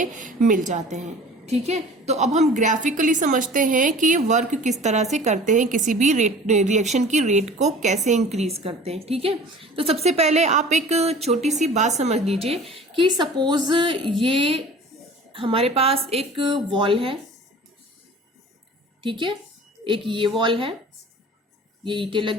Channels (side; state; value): both; normal; correlation 0.43